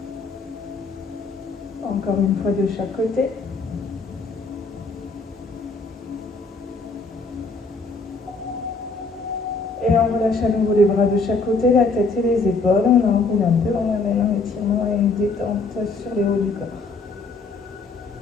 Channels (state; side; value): quieter; right; 3.9 dB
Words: Encore une fois de chaque côté. Et on relâche à nouveau les bras de chaque côté, la tête et les épaules. On enroule un peu, on amène un étirement et une détente sur les hauts du corps.